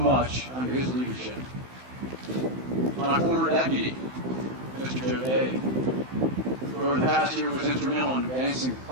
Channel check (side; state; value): left; late; 16 ms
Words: under his leadership. My former deputy, Mr. Joe Day, who over the past year was instrumental in advancing